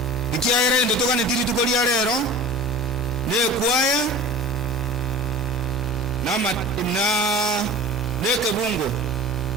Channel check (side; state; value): both; normal; correlation 0.39